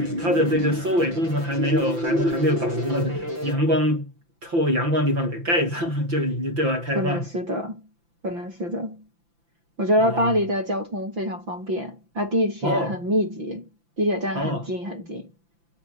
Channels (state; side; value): late; left; 5.9 ms